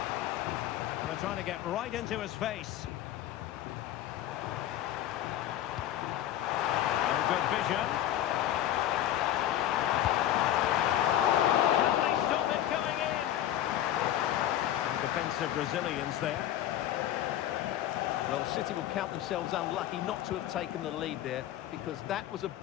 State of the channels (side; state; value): right; quieter; 12.3 dB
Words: They're trying to get right into his face. Oh, good vision. Can they stop it going in? Defensive resilience there. Well, City will count themselves unlucky not to have taken the lead there, because that was a